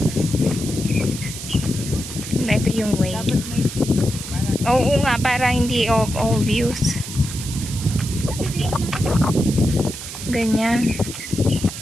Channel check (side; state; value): right; noise; hiss, 10 dB below the sound